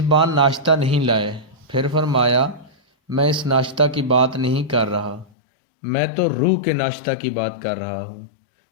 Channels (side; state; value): right; drops out; at 5.2 s